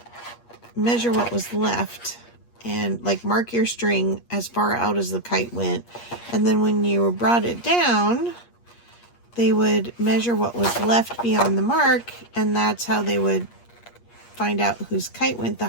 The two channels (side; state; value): right; late; 8.4 ms